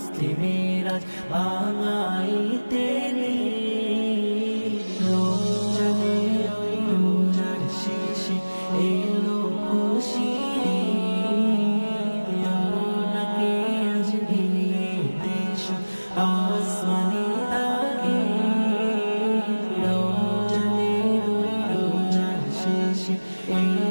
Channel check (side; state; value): both; inverted; correlation -1.00